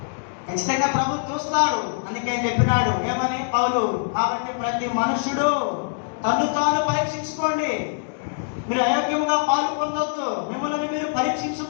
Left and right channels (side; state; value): right; silent; digital silence